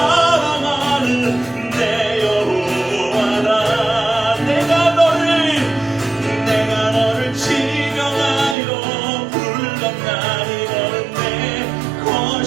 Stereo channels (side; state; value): left; drops out; at 8.6 s